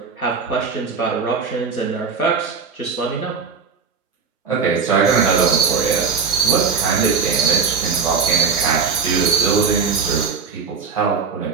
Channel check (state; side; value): quieter; left; 5.6 dB